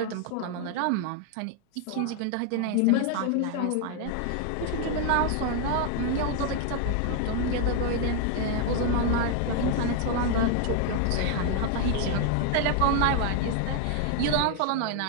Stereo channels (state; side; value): different; both; correlation 0.00